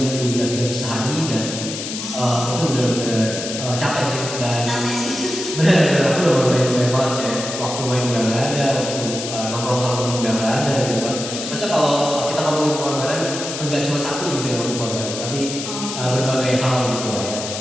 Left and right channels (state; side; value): noise; left; hiss, 6 dB below the sound